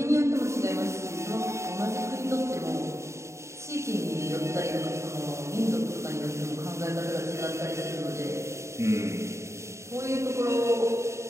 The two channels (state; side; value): late; left; 0.14 ms